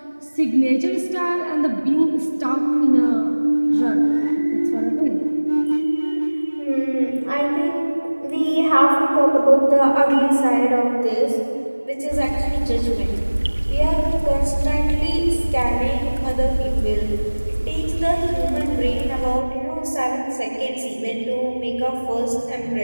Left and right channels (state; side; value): inverted; both; correlation -1.00